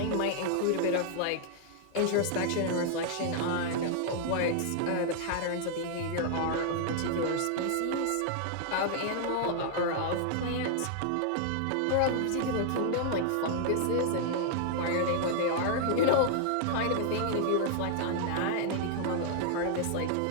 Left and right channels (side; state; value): both; different; correlation 0.00